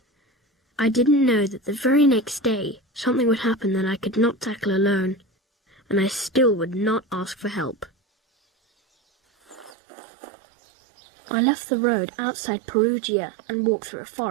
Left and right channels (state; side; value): drops out; left; at 9.8 s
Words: I didn't know that the very next day something would happen that I could not tackle alone, and I still would not ask for help. I left the road outside Perugia and walked through a